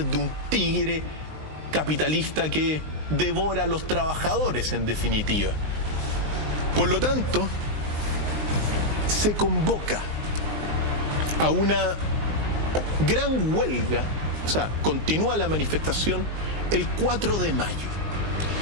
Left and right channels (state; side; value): late; left; 19 ms